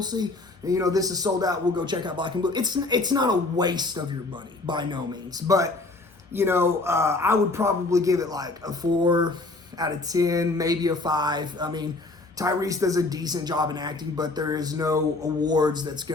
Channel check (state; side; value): quieter; right; 3.2 dB